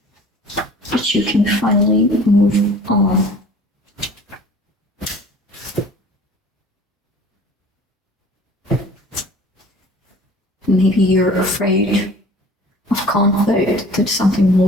that you can finally move on. Maybe you're afraid of conflict, that something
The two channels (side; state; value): both; normal; correlation 0.47